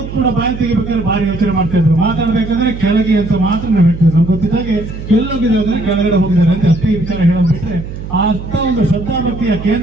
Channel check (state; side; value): noise; right; hum, 9 dB below the sound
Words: ಕೂಡ ಬಾಯಿ ತೆಗಿಬೇಕಾದ್ರೆ ಭಾರಿ ಯೋಚನೆ ಮಾಡ್ತಾ ಇದ್ರು. ಮಾತಾಡ್ಬೇಕಾದ್ರೆ ಕೆಳಗೆ ಅಂತ ಮಾತ್ರ ನಾವು ಹೇಳ್ತಿದ್ವಿ. ನಮ್ಗೆ ಗೊತ್ತಿದ್ದಾಗೆ ಎಲ್ಲೋಗಿದ್ದಾರೆ ಅಂದ್ರೆ ಕೆಳಗಡೆ ಹೋಗಿದ್ದಾರೆ ಅಂತ ಅಷ್ಟೇ ವಿಚಾರ ಹೇಳೋದು ಬಿಟ್ರೆ, ಅಂತ ಒಂದು ಶ್ರದ್ಧಾಭಕ್ತಿಯ